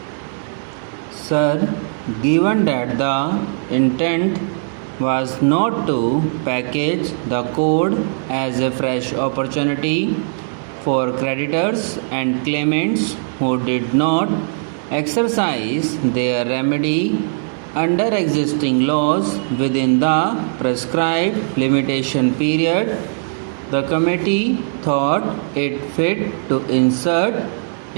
Sir, given that the intent was not to package the code as a fresh opportunity for creditors and claimants who did not exercise their remedy under existing laws within the prescribed limitation period, the committee thought it fit to insert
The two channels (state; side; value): silent; left; digital silence